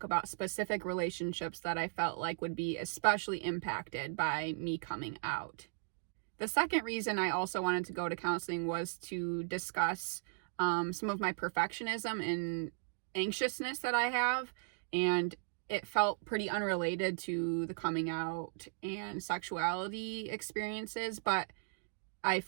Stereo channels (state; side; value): silent; left; digital silence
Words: about specific relationships that I felt like would be especially impacted by me coming out. The second reason I also wanted to go to counseling was to discuss some of my perfectionism and anxiousness that I have, and it felt pretty unrelated to the coming out and sexuality experiences, but I